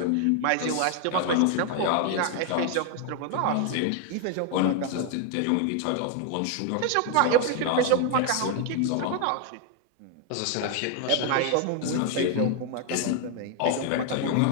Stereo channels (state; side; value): different; both; correlation 0.00